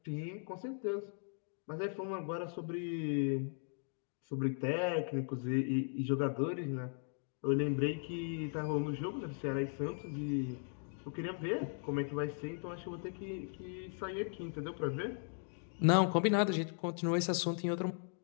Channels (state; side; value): silent; right; 53 dB below the other